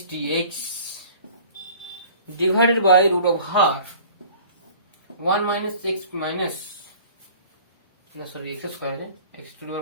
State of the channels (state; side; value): inverted; both; correlation -0.47